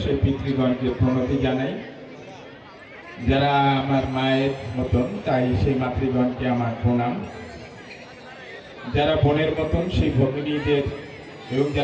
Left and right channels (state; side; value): identical; both; correlation 1.00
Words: সেই পিতৃগণকে প্রণতি জানাই। যারা আমার মায়ের মতন তাই সেই মাতৃগণকে আমার প্রণাম। যারা বোনের মতন সেই ভগিনীদের এবং